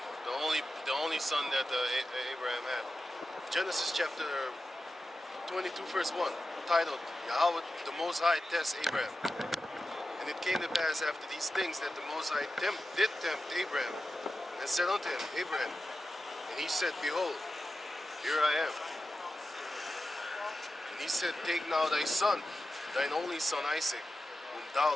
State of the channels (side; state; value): both; normal; correlation 0.92